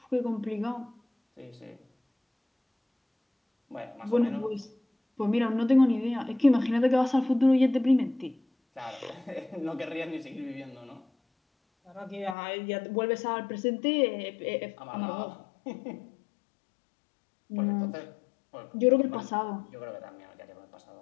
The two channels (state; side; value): drops out; right; at 12.4 s